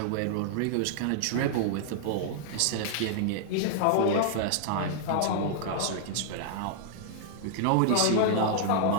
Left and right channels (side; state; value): both; different; correlation -0.01